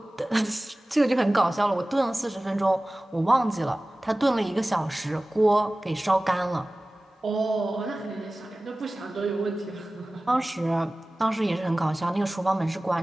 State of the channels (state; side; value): normal; both; correlation 0.98